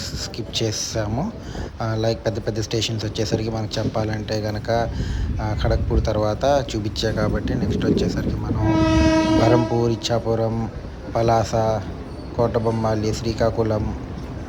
స్కిప్ చేసాము. లైక్ పెద్ద పెద్ద స్టేషన్స్ వచ్చేసరికి మనకు చెప్పాలంటే కనుక ఖడగ్పూర్ తర్వాత చూపించా కాబట్టి నెక్స్ట్ వచ్చేసరికి మనం బరంపూర్, ఇచ్చాపురం, పలాస, కోటబొమ్మాలి, శ్రీకాకుళం,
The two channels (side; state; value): both; identical; correlation 1.00